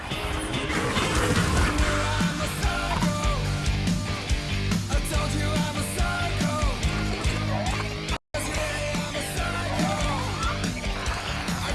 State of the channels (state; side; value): identical; both; correlation 1.00